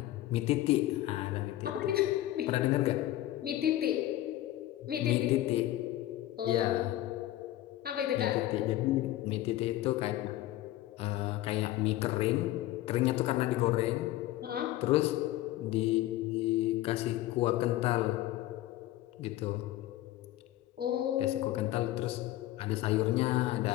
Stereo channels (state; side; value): quieter; right; 15.0 dB